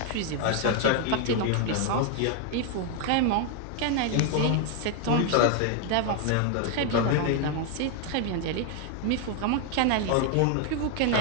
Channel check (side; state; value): both; different; correlation 0.00